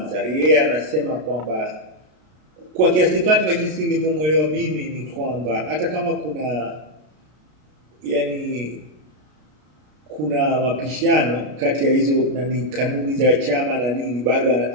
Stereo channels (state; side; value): late; left; 33 ms